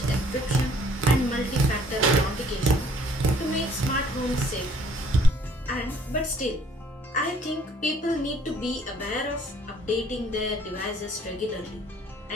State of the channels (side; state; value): both; normal; correlation 0.59